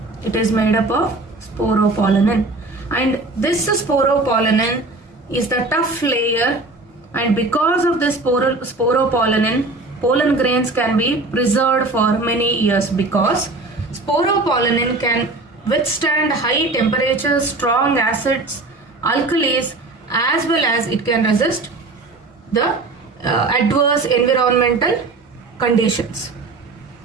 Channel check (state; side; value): quieter; left; 3.2 dB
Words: It is made up of sporopollenin. And this sporopollenin is the tough layer, and because of this sporopollenin, pollen grains can be preserved for many years, because sporopollenin can withstand high temperatures, strong acids, alkalis, as well as it can resist the adverse environmental conditions.